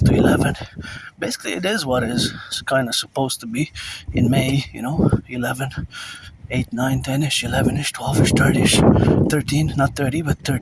11. Basically, it is what it is. It's kind of supposed to be in May, 11. 8, 9, 10-ish, 11-ish, 12-ish, 30-ish, 13, not 30, but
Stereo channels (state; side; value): identical; both; correlation 1.00